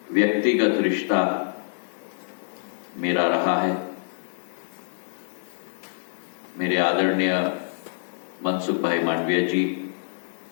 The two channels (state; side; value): silent; right; digital silence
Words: व्यक्तिगत रिश्ता मेरा रहा है, मेरे आदरणीय मनसुख भाई मांडविया जी,